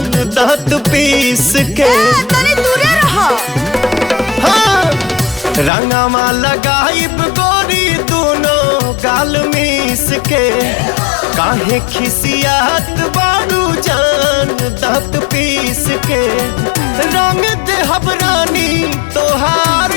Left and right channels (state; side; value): drops out; right; at 5.7 s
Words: दांत पीस के। तनी दूरे रहो। हाँ रंगवा लगाइब गोरी दोनों गाल मिस के। काहे खिसियात बाड़ू जान दांत पीस के। रंग देहब रानी तोहार